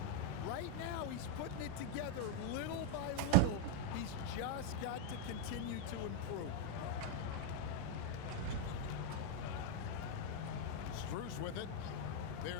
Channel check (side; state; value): both; different; correlation 0.00